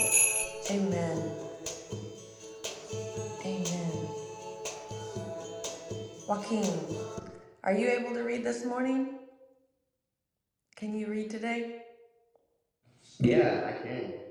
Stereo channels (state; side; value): identical; both; correlation 1.00